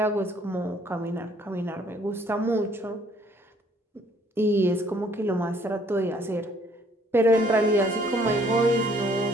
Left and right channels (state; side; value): normal; both; correlation 0.61